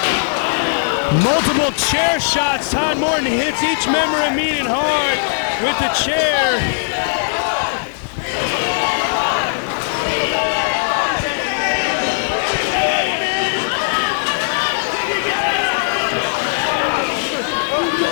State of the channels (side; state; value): right; silent; digital silence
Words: Multiple chair shots. Todd Morton hits each member of Mean and Hard with the chair.